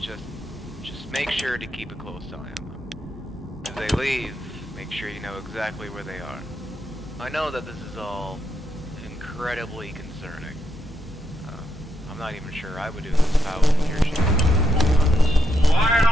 make sure to keep a close eye on them. As they leave, make sure you know exactly where they are. I know that this is all incredibly concerning. I'm not even sure I would do this if I was in your shoes.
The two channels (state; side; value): normal; both; correlation 0.81